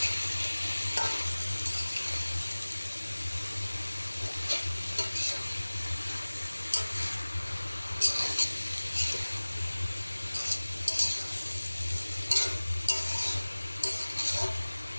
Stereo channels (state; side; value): inverted; both; correlation -1.00